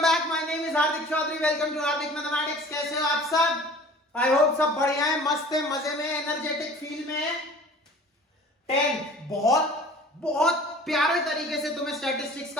back. My name is Hardik Chaudhary. Welcome to Hardik mathematics. कैसे हो आप सब? आई होप सब बढ़िया है, मस्त है, मजे में, एनर्जेटिक फील में है। 10 बहुत बहुत प्यारे तरीके से तुम्हें स्टैटिस्टिक्स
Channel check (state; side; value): normal; both; correlation 0.45